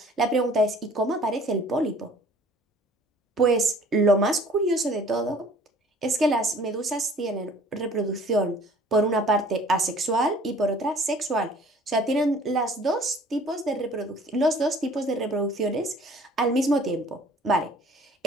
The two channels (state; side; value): normal; both; correlation 0.52